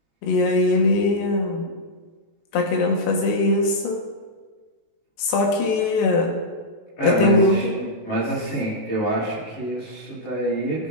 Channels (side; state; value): right; late; 19 ms